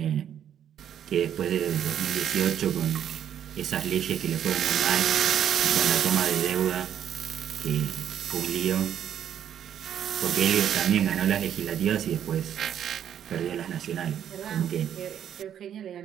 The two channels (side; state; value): left; quieter; 9.6 dB